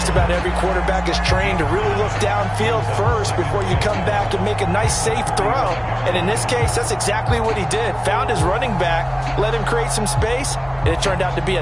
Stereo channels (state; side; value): identical; both; correlation 1.00